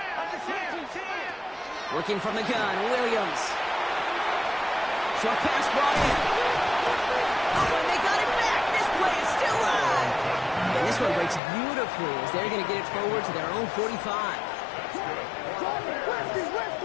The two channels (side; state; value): right; drops out; at 11.4 s